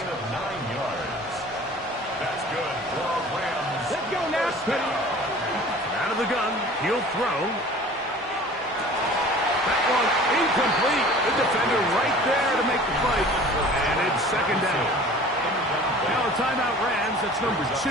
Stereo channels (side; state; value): both; normal; correlation 0.45